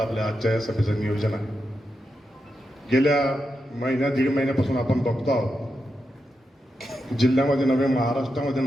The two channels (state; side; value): normal; both; correlation 0.87